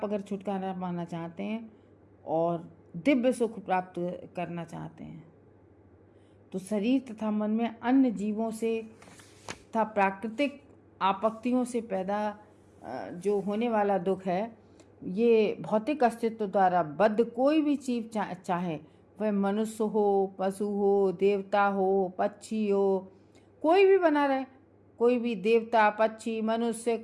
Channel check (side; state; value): both; identical; correlation 1.00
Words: अगर छुटकारा पाना चाहते हैं और दिव्य सुख प्राप्त करना चाहते हैं, तो शरीर तथा मन में अन्य जीवों से तथा प्राकृतिक आपत्तियों से पैदा जो होने वाला दुख है, ये भौतिक अस्तित्व द्वारा बद्ध कोई भी जीव चाहे वह मनुष्य हो, पशु हो, देवता हो, पक्षी हो, कोई भी बना रहे, कोई भी देवता, पक्षी, मनुष्य,